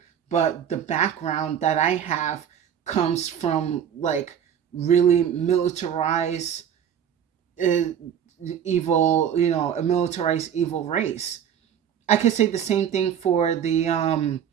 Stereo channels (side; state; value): left; quieter; 8.9 dB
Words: but the background that I have comes from like really militarized, uh, evil, a militarized evil race. I could say the same thing for the